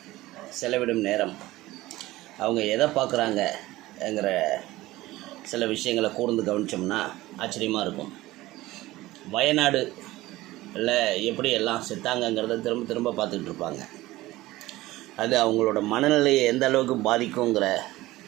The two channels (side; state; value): left; quieter; 17.8 dB